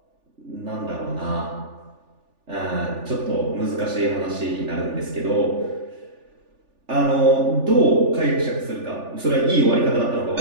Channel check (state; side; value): late; left; 3.4 ms